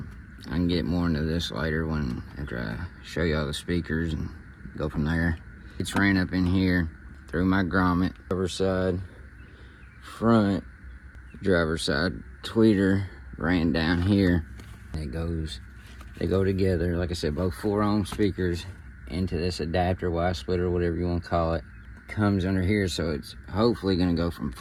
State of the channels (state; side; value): identical; both; correlation 1.00